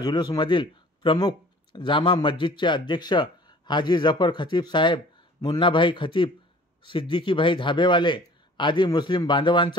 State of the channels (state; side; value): normal; both; correlation 0.49